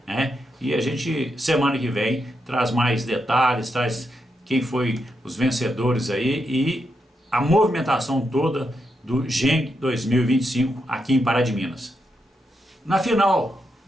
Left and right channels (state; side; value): normal; both; correlation 0.83